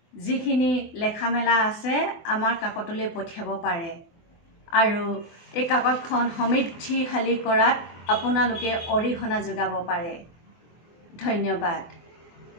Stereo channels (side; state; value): right; late; 24 ms